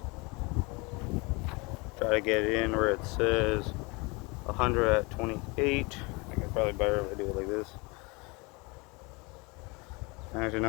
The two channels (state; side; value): quieter; right; 27.4 dB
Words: Try to get it in where it says 100 at 28. I think it's probably better if I do it like this. Actually,